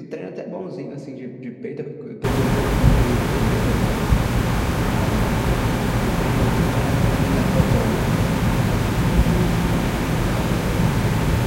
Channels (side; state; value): both; identical; correlation 1.00